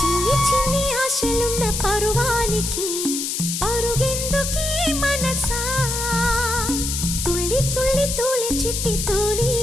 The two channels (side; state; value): left; noise; hiss, 2 dB below the sound